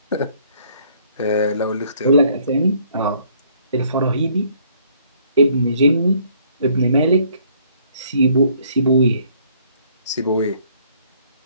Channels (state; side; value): inverted; both; correlation -0.63